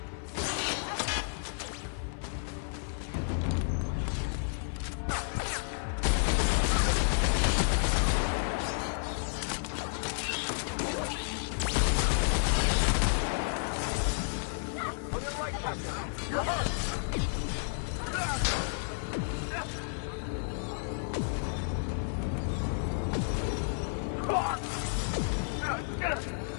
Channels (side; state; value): right; silent; 57 dB below the other